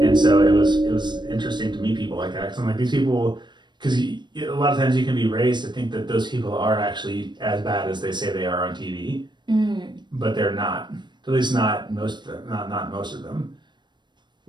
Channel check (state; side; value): late; left; 0.22 ms